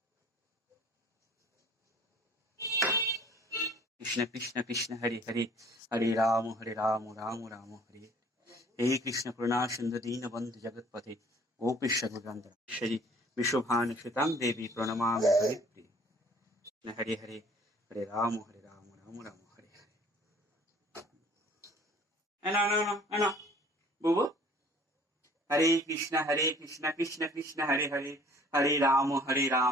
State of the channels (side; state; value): both; normal; correlation 0.53